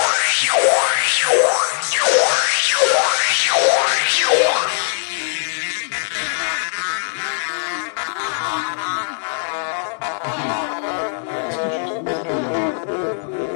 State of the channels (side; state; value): right; silent; digital silence